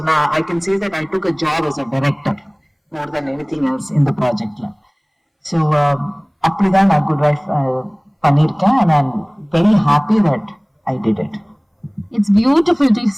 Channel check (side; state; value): both; identical; correlation 1.00